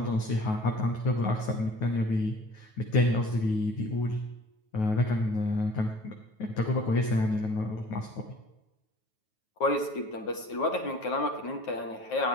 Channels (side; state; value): right; late; 9.3 ms